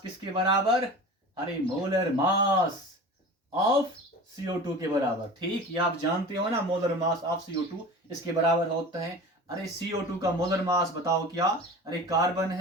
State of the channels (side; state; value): both; normal; correlation 0.36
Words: किसके बराबर, अरे मोलर मास ऑफ CO2 के बराबर। ठीक, ये आप जानते हो ना, मोलर मास ऑफ CO2 इसके बराबर होता है। अरे CO2 का मोलर मास बताओ क्या, अरे कार्बन